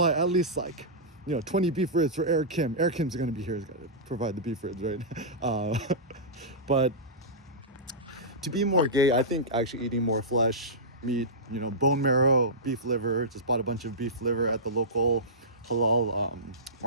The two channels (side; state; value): both; normal; correlation -0.15